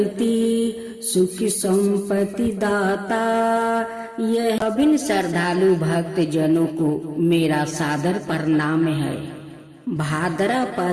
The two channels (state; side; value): identical; both; correlation 1.00